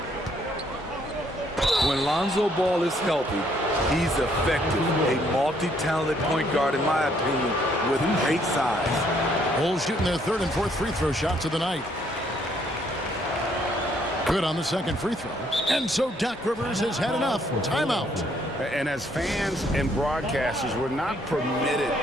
When Lonzo Ball is healthy, he's effective. A multi-talented point guard, in my opinion, with great size. Bulls shooting their 3rd and 4th free throw shots of the night. Good on the 2nd free throw. And so Doc Rivers has had enough. Timeout. And as fans and broadcasters, we're not permitted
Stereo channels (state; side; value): normal; both; correlation 0.68